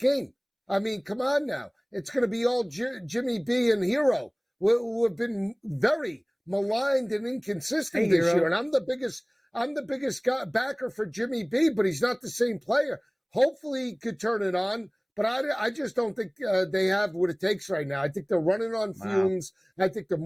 I mean, come on now. It's going to be all Jimmy B and Hero, who have been very maligned and inconsistent this year. And I'm the biggest backer for Jimmy B, but he's not the same player. Hopefully he could turn it on, but I just don't think they have what it takes right now. I think they're running on fumes. I think the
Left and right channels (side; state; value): both; identical; correlation 1.00